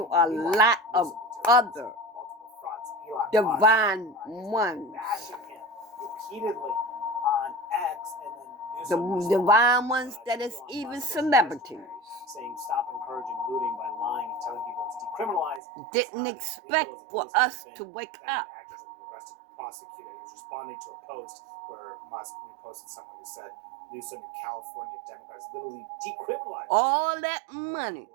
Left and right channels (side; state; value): left; drops out; at 15.6 s